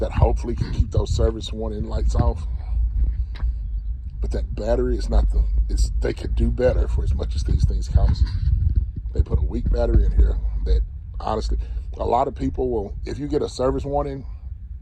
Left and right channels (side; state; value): both; identical; correlation 1.00